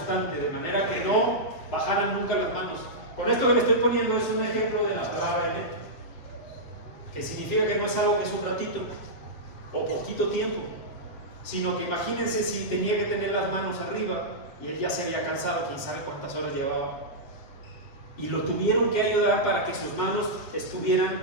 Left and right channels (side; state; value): right; late; 7.7 ms